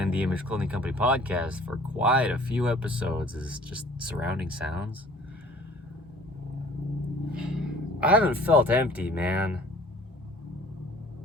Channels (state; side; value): normal; both; correlation 0.51